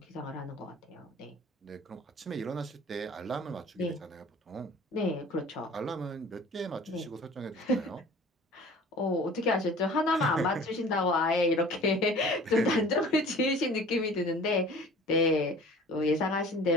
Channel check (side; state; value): both; normal; correlation 0.46